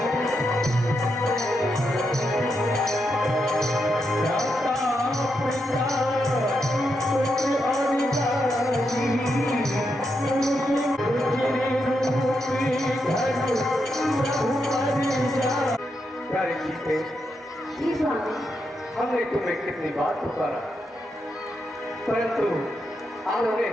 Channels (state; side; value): normal; both; correlation 0.83